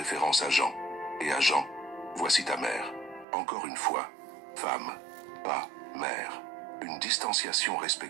à Jean, et à Jean, « Voici ta mère ». Encore une fois, femme, pas mère. Une distanciation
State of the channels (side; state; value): left; drops out; at 3.2 s